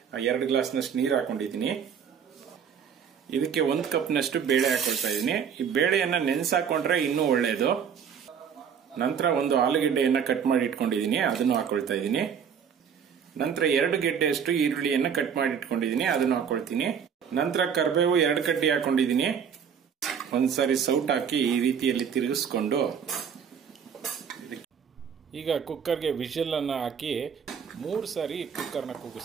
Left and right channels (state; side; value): quieter; left; 7.4 dB